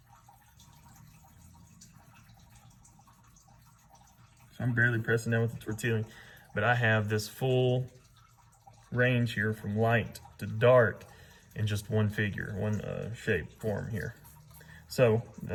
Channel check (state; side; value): identical; both; correlation 1.00